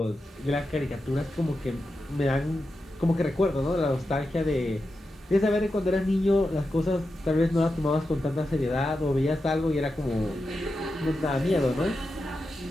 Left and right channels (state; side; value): normal; both; correlation 0.89